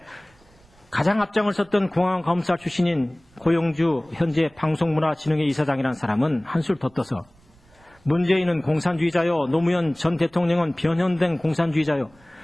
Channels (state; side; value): noise; right; rumble, 30 dB below the sound